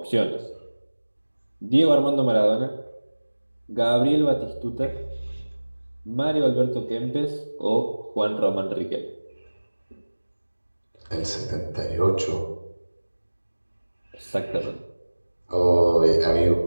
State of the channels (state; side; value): inverted; both; correlation -1.00